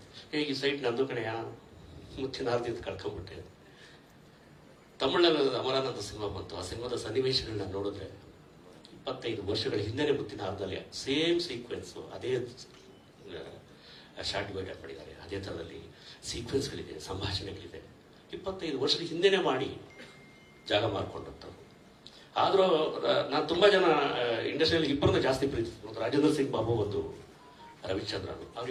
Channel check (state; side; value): identical; both; correlation 1.00